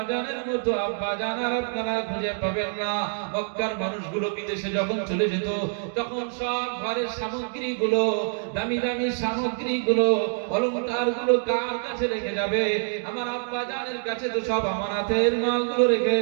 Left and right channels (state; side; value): silent; left; 61 dB below the other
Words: জানের মতো আব্বা জান আর আপনারা খুঁজে পাবেন না। মক্কার মানুষগুলো বিদেশে যখন চলে যেত, তখন সব ঘরের সামগ্রীগুলো, দামি দামি সামগ্রীগুলো, অলংকারগুলো কার কাছে রেখে যাবে? আমার আব্বা জানের কাছে তো সব আমানাতের মালগুলো রেখে